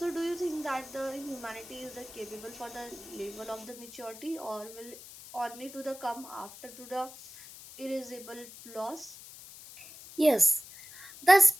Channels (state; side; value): noise; left; hiss, 16 dB below the sound